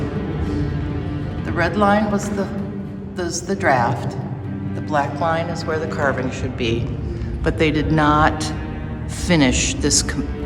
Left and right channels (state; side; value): identical; both; correlation 1.00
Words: the red line was the draft. The black line is where the carving should be. But they did not finish